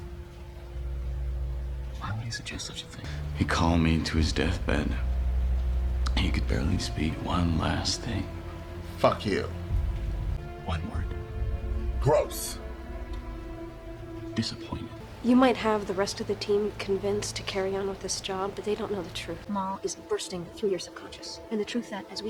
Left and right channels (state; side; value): identical; both; correlation 1.00